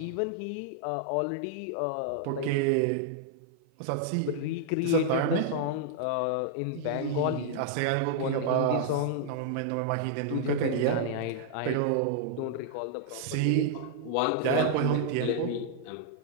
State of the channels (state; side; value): different; both; correlation -0.01